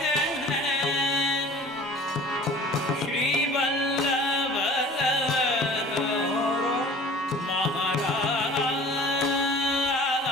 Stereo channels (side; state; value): both; normal; correlation 0.46